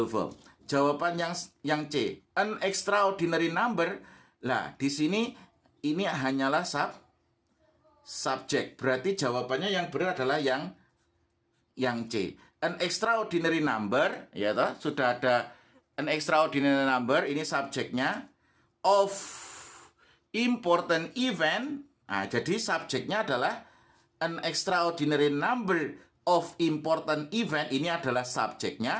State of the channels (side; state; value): both; identical; correlation 1.00